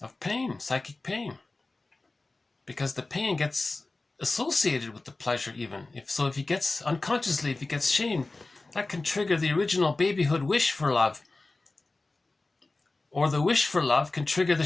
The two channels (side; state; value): right; quieter; 3.3 dB